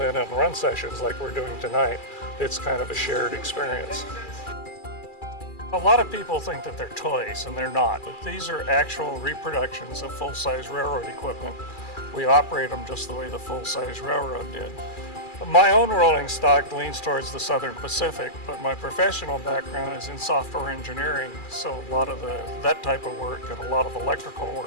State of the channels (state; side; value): late; right; 2.4 ms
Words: in run sessions like we're doing tonight, it's kind of a shared experience. A lot of people think that they're toys, and they're not. But these are actual reproductions of full-size railroad equipment. We operate them just the way the full-size railroad did. My own rolling stock leans towards the Southern Pacific, but my professional background is in software engineering, so a lot of that type of work and a lot of electrical